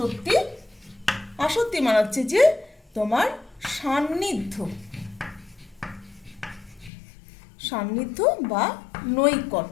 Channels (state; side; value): drops out; right; at 6.9 s